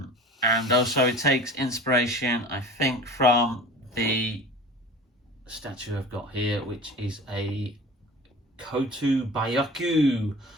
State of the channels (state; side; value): normal; both; correlation 0.38